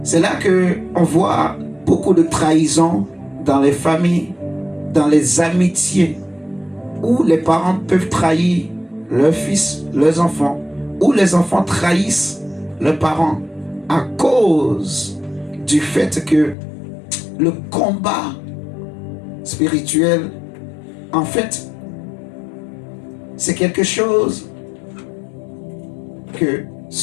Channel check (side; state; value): right; drops out; at 16.6 s